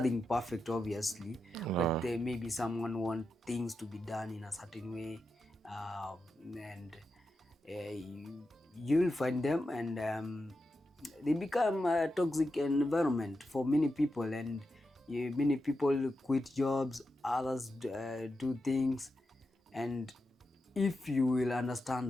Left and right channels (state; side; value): normal; both; correlation 0.88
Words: perfect obviously, but maybe someone want things to be done in a certain way, and you'll find them, and they become a toxic environment for many people, and many people quit jobs, others do things. And if you will